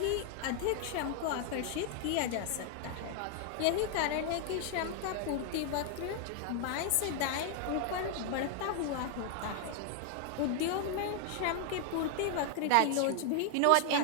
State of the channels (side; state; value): both; different; correlation 0.00